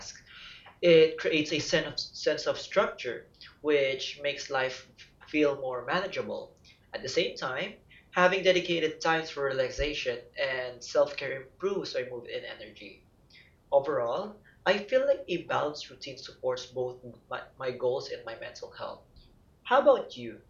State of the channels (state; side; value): identical; both; correlation 1.00